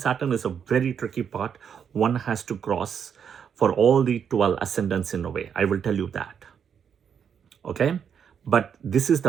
is a very tricky part. One has to cross for all the 12 ascendants in a way. I will tell you that. Okay? But this is the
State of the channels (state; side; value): quieter; left; 7.6 dB